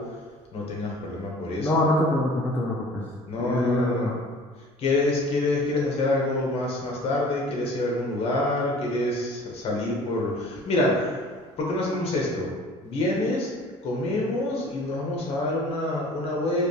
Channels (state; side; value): normal; both; correlation 0.47